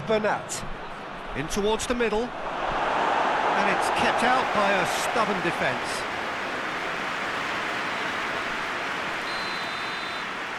Bernat. In towards the middle. And it's kept out by a stubborn defence.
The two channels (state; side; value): identical; both; correlation 1.00